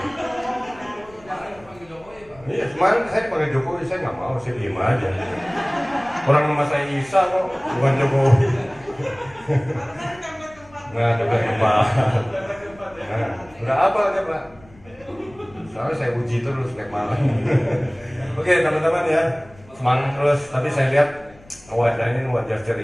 Iya, kemarin saya dipanggil Jokowi, saya nggak mau, saya diem aja. Orang nama saya Isa kok, bukan Jokowi. Nah, udah kembali. Nah, udah apa aja Pak? Soalnya saya uji terus tiap malam. Oke teman-teman ya, semangat terus. Tapi saya lihat wajahnya ini wajah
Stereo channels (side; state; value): left; noise; rumble, 25 dB below the sound